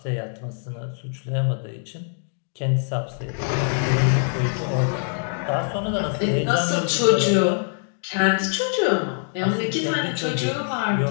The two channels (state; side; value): silent; right; digital silence